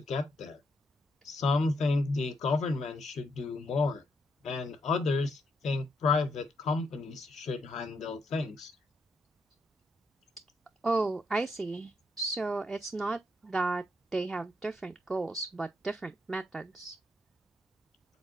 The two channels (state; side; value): normal; both; correlation 0.78